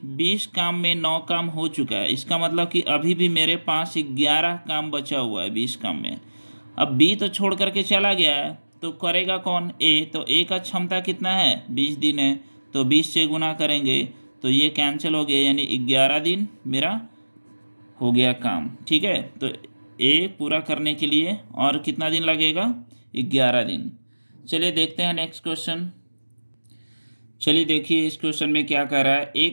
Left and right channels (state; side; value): inverted; both; correlation -1.00